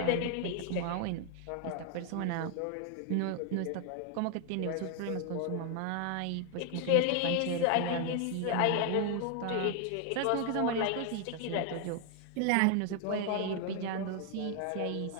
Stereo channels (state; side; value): different; both; correlation 0.00